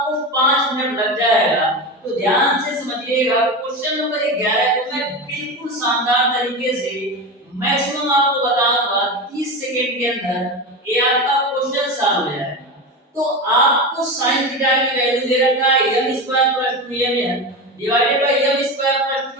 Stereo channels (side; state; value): both; normal; correlation 0.22